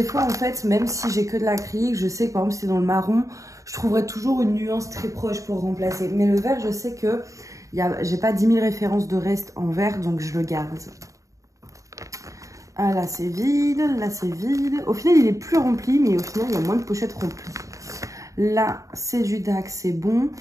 fois, en fait, même si j'ai que de l'acrylique, je sais que par exemple, c'est dans le marron, je trouverai toujours une nuance très proche pour remplacer. Mais le vert, je sais que j'ai pas 10 000 références de reste en vert, donc je le garde. Ah, là, c'est vide. Là, c'est vide. Au final, il est plus rempli, mais au final, il y a moins de pochettes remplies. Là, c'est du DAC, c'est bon.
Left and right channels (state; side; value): late; left; 0.16 ms